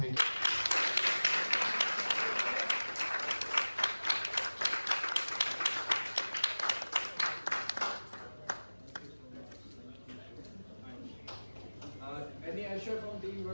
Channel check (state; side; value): inverted; both; correlation -1.00